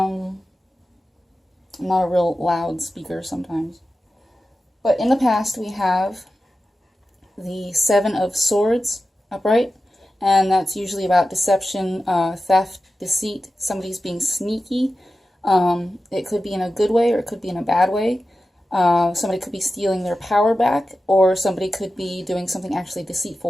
not a real loud speaker sometimes. But in the past we have the Seven of Swords upright, and that's usually about deception, theft, deceit, somebody's being sneaky. It could be in a good way or it could be in a bad way. Somebody could be stealing their power back, or somebody could be doing something actually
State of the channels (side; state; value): both; normal; correlation 0.93